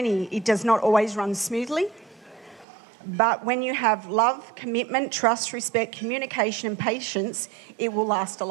It does not always run smoothly. But when you have love, commitment, trust, respect, communication and patience, it will last a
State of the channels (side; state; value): left; drops out; at 2.7 s